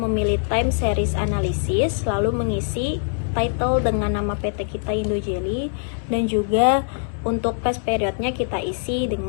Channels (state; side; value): silent; right; digital silence